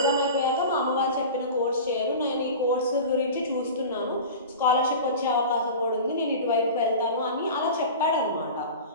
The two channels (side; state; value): both; inverted; correlation -0.33